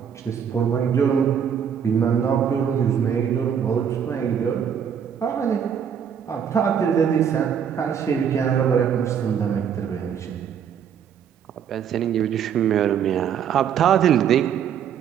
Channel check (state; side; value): quieter; left; 8.1 dB